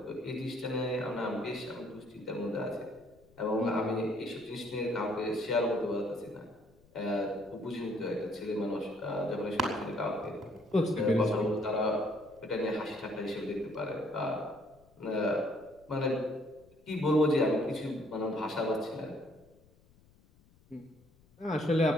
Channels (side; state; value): left; noise; rumble, 29 dB below the sound